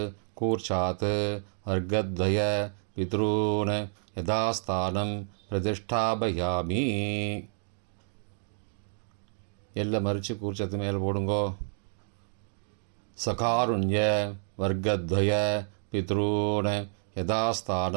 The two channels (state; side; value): silent; left; 58 dB below the other